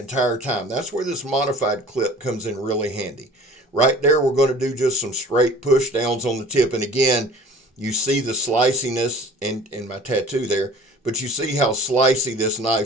time. That's where this modified clip comes in really handy. Right there, we're going to do just some straight push downs on the tip. And again, you see the sliciness in my tattoo there, but you see how slicey this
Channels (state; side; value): normal; both; correlation 0.46